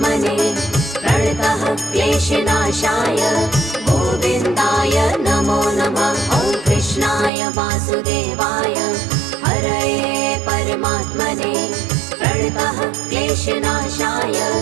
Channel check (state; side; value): drops out; left; at 7.3 s